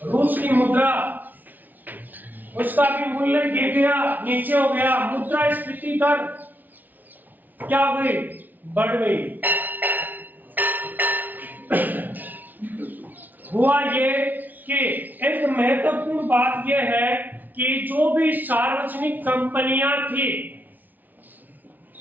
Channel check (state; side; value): late; left; 0.083 ms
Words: रूस की मुद्रा, उसका भी मूल्य गिर गया, नीचे हो गया। मुद्रास्फीति दर क्या हो गई, बढ़ गई। हुआ ये कि एक महत्वपूर्ण बात यह है कि जो भी सार्वजनिक कंपनियां थी